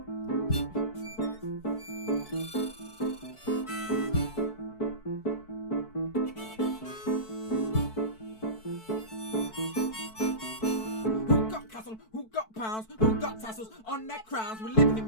Who got pounds, who got tassels on their crowns? We're living in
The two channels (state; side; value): late; right; 4.6 ms